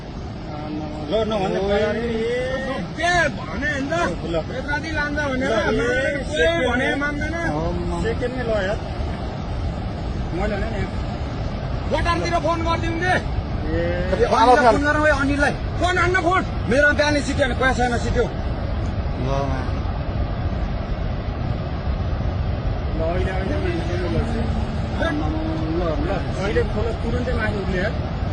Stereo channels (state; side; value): identical; both; correlation 1.00